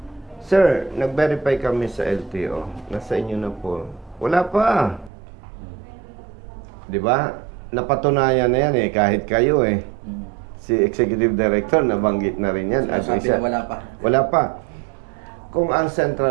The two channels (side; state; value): left; drops out; at 5.1 s